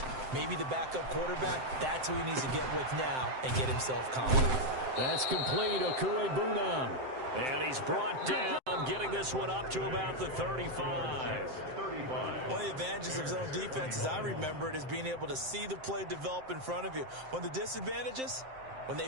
maybe the backup quarterback, that's who he needs to get with now and get himself confident. That's complete. Okuebunam. And he's brought down, getting this one up to about the 35. One of the advantages of zone defense, as I remember it, is being able to see the play develop in front of you. One of the disadvantages, when they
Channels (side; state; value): left; late; 7.7 ms